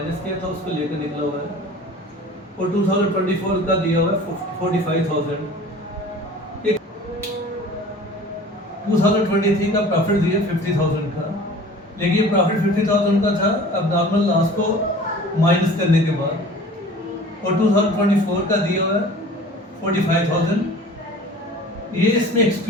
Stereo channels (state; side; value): normal; both; correlation 0.44